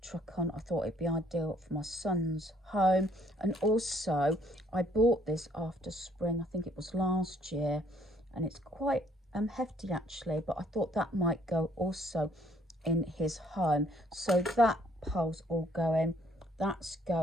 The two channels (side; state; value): both; normal; correlation 0.64